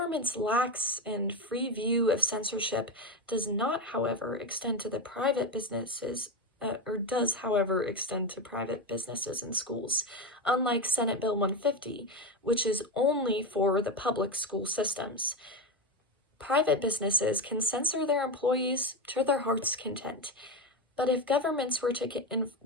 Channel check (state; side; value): normal; both; correlation 0.14